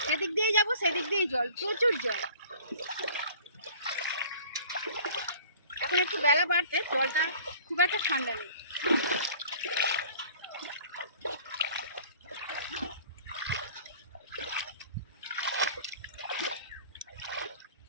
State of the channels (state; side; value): inverted; both; correlation -0.48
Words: সেদিক দিয়েই যাবো, সেদিক দিয়েই জল, প্রচুর জল। এখন একটু বেলা বাড়তে জলটা খুব একটা ঠান্ডা নেই।